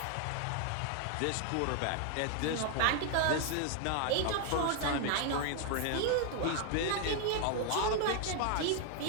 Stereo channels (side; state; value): both; different; correlation 0.00